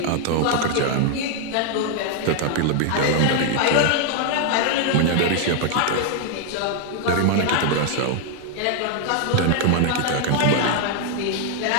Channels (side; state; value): both; different; correlation 0.00